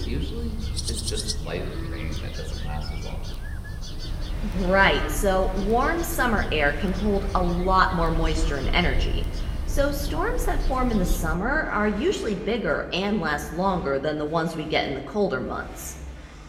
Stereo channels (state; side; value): identical; both; correlation 1.00